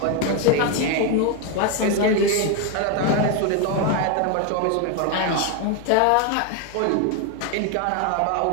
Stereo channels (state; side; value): different; both; correlation 0.01